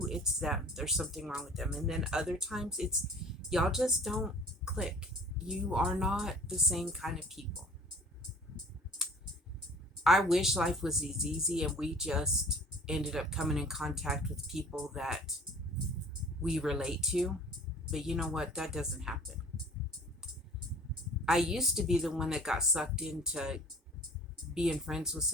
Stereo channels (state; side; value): normal; both; correlation 0.49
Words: it's them. There's something wrong with them. And then other times, it's y'all just don't click. You are not the same kind of people. I wish life was as easy and we just ended up coming in contact with people that we relate to. But you know what? That doesn't happen. I used to be the one that got sucked into being friends with